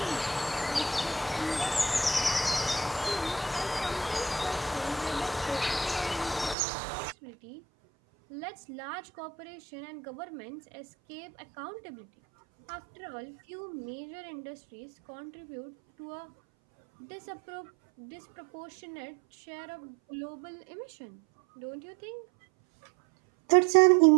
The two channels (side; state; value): left; drops out; at 6.6 s